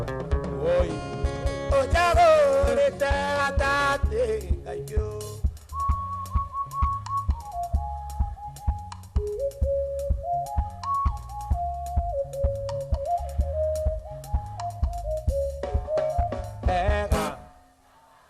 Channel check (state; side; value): identical; both; correlation 1.00